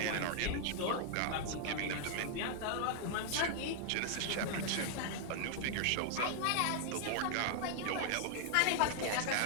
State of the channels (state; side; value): different; both; correlation -0.01